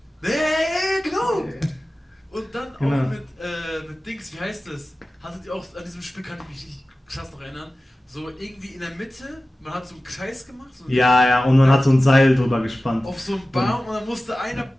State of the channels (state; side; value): normal; both; correlation 0.96